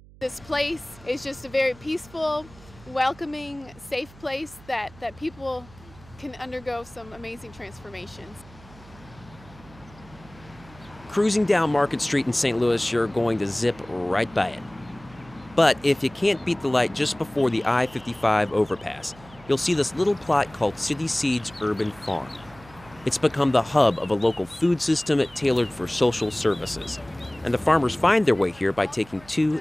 This place is just a very peaceful, welcoming, safe place that people can undergo some amazing transformations. Cruising down Market Street in St. Louis, you're going to zip right by it. But if you can't beat the light just before the I-55 overpass, you'll see this little plot called City Seeds Urban Farm. It's become the hub of a local food system tailored for social services. And the farmers find their way here by taking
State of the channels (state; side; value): noise; right; hum, 23 dB below the sound